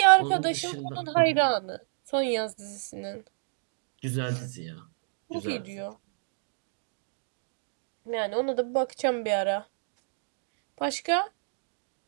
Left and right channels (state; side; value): silent; left; digital silence